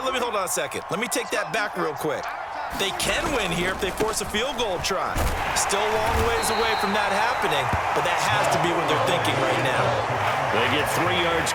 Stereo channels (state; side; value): identical; both; correlation 1.00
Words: let me hold on a second. Let me take that back real quick. They can win here if they force a field goal try. Still a long ways away from that happening, but that has to be what they're thinking right now. They get 3 yards